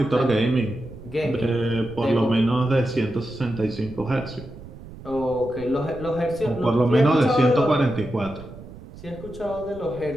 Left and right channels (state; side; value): noise; right; rumble, 16 dB below the sound